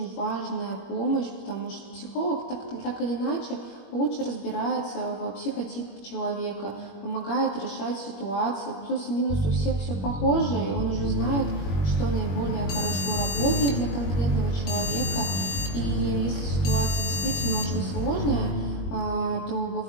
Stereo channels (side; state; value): right; late; 21 ms